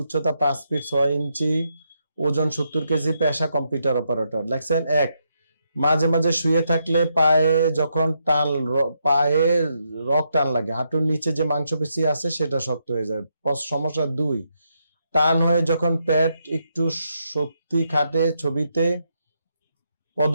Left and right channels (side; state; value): both; inverted; correlation -0.80